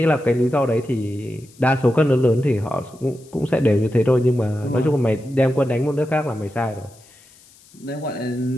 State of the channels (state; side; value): noise; left; hiss, 27 dB below the sound